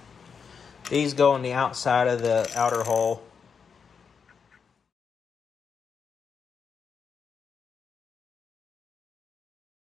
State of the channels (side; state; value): right; quieter; 6.2 dB